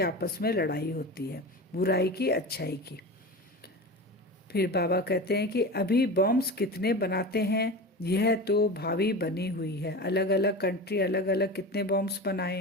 आपस में लड़ाई होती है, बुराई की अच्छाई की। फिर बाबा कहते हैं कि अभी बॉम्ब्स कितने बनाते हैं, यह तो भावी बनी हुई है। अलग अलग कंट्री अलग अलग कितने बॉम्ब्स बनाए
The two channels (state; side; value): normal; both; correlation 0.29